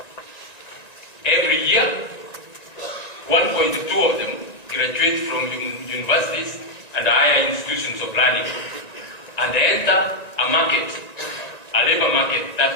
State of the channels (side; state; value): right; late; 1.9 ms